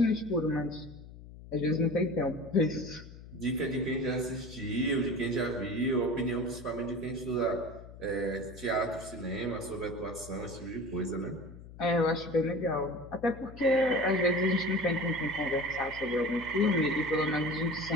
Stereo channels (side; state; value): left; noise; hum, 16 dB below the sound